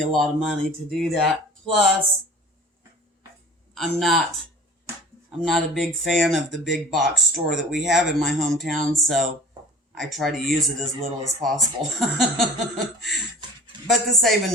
a lot of money to do that. Plus, I'm not a big fan of the big box store that we have in my hometown, so I try to use it as little as possible. But the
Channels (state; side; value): normal; both; correlation 0.43